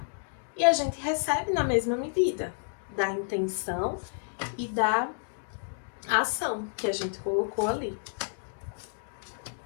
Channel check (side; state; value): right; silent; digital silence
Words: e a gente recebe na mesma medida da intenção e da ação que a gente colocou ali.